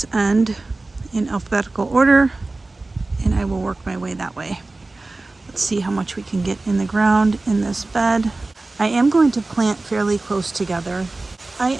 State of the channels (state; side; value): quieter; left; 3.2 dB